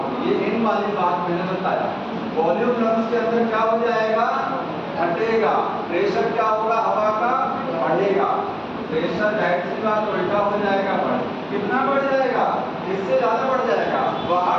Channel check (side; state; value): both; identical; correlation 1.00